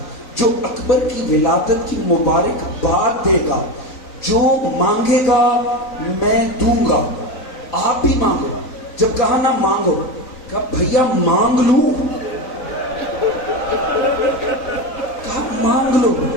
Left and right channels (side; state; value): right; late; 3.9 ms